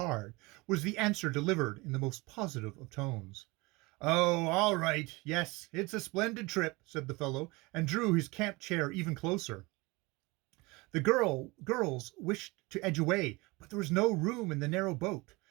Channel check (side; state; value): left; quieter; 24.2 dB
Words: was the answer delivered in the most positive of tones. Oh, all right. Yes, it's a splendid trip, said the fellow, and drew his camp chair even closer. The girls wished to edge away, but there was no room in the narrow boat.